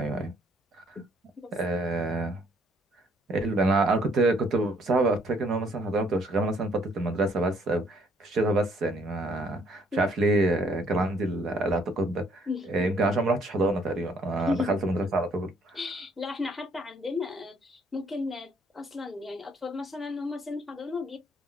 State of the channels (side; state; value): both; normal; correlation 0.66